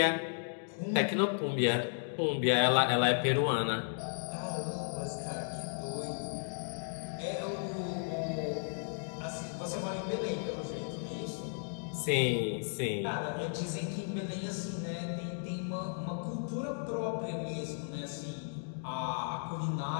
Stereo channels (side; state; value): right; silent; digital silence